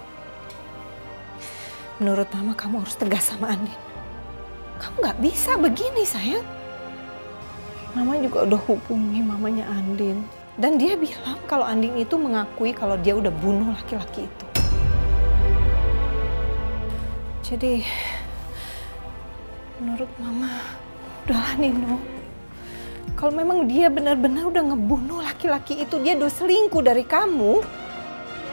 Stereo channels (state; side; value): inverted; both; correlation -1.00